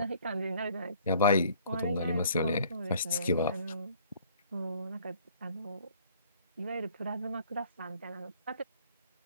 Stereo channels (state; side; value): inverted; both; correlation -0.57